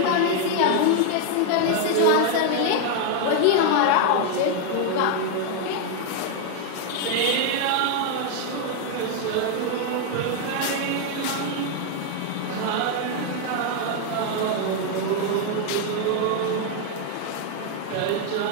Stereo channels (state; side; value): different; both; correlation 0.00